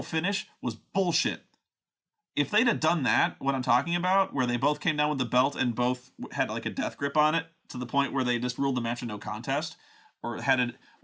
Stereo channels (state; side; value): identical; both; correlation 1.00